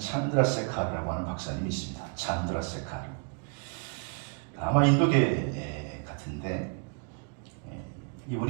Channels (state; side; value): quieter; left; 38.8 dB